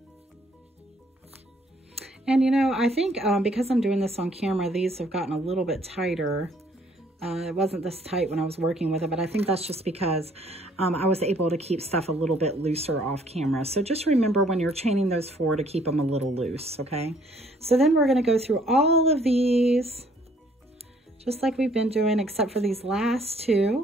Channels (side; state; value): both; normal; correlation 0.62